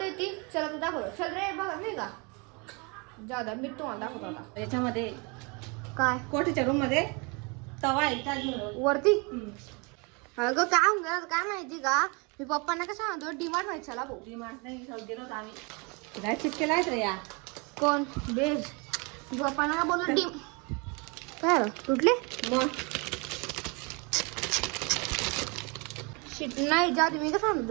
ती. चला तर दाखव. चल रे बघा नाही का जादा मी तुम्हाला दाखवतो आता. याच्यामध्ये काय कोठीच्या रूम मध्ये तवा आहे वरती. अगं काय होऊन गेलं काय माहिती का, मी पप्पांना कसं म्हणतो डीमार्ट व्हायचं चला भाऊ. डीमार्ट नाही गेलो होतो आम्ही. काय चिटकेला आहेत रे या कोण बेज पप्पांना ना बोललो डी काय तुटले मग शिट नाही जा तुम्ही कसं सांगतो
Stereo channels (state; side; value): quieter; left; 30.7 dB